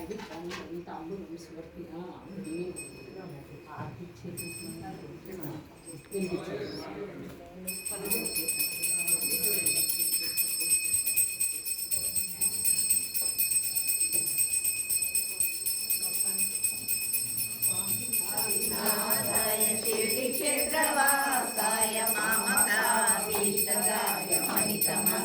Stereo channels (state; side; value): identical; both; correlation 1.00